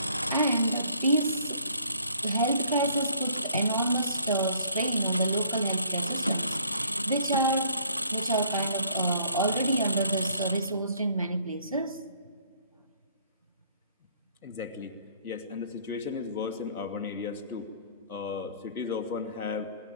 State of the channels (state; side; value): inverted; both; correlation -0.60